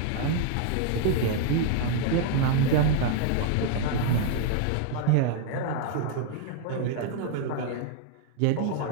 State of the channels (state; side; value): different; both; correlation 0.00